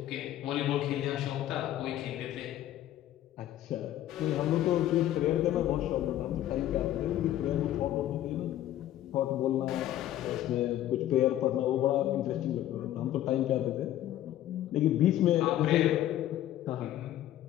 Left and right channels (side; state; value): right; quieter; 13.0 dB